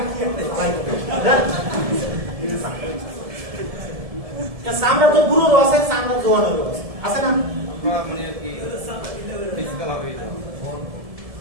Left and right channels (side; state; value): left; late; 1.7 ms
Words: কি একটা ভাই সামরা তো বুড়ো আছে সামরা জোয়ান আছে না মানে কি ফিজিক্যাল হবে